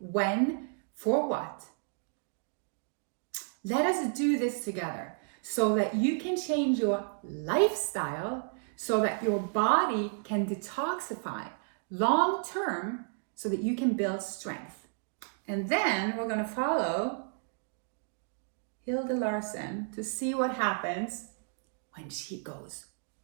when, for what. Let us do this together so that you can change your lifestyle, so that your body can detoxify long term, so that you can build strength. And then we're going to follow Hilde Larsen to see what happens when she goes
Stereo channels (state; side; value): silent; left; 56 dB below the other